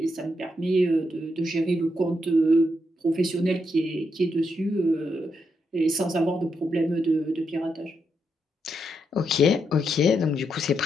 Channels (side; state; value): both; normal; correlation 0.81